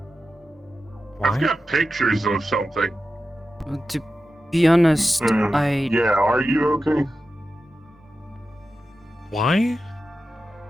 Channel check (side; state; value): both; normal; correlation 0.92